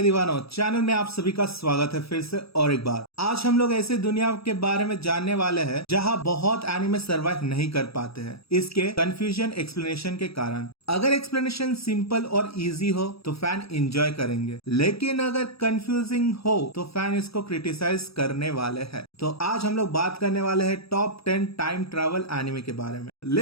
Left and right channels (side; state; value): right; late; 0.77 ms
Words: दीवानों, channel में आप सभी का स्वागत है फिर से और एक बार। आज हम लोग ऐसे दुनिया के बारे में जानने वाले हैं जहां बहुत एनिमे सरवाइव नहीं कर पाते हैं, इसके कंफ्यूजन एक्सप्लेनेशन के कारण। अगर एक्सप्लेनेशन सिंपल और इजी हो तो फैन एंजॉय करेंगे, लेकिन अगर कंफ्यूजिंग हो तो फैन इसको क्रिटिसाइज करने वाले हैं। तो आज हम लोग बात करने वाले हैं टॉप 10 टाइम ट्रैवल एनिमे के बारे में।